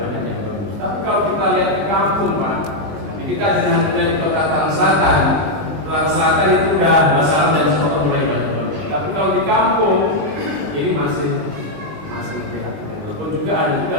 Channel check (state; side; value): late; left; 20 ms